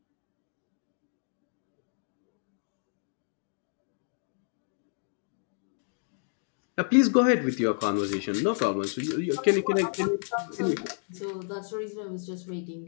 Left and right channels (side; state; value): right; silent; 55 dB below the other